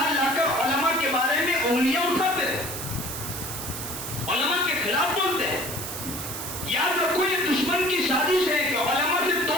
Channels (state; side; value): noise; right; hiss, 7 dB below the sound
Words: لا کر علماء کے بارے میں انگلیاں اٹھاتے ہیں، علماء کے خلاف بولتے ہیں۔ یاد رکھو، یہ دشمن کی سازش ہے کہ علماء سے